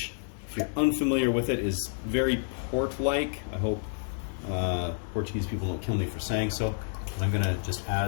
if you're unfamiliar with it, is very port-like. I hope Portuguese people don't kill me for saying so, but I'm gonna just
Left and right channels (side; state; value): right; silent; 58 dB below the other